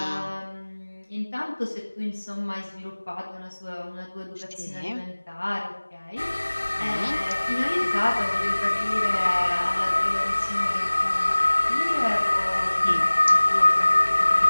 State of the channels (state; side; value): inverted; both; correlation -1.00